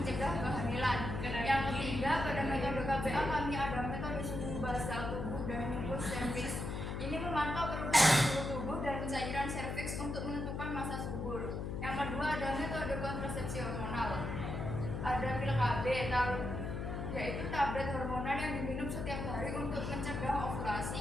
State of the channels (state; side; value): noise; left; hum, 4 dB below the sound